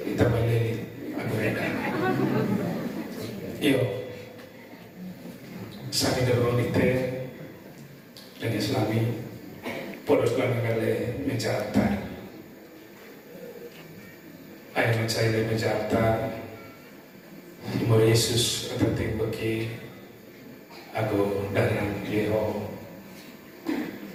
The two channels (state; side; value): identical; both; correlation 1.00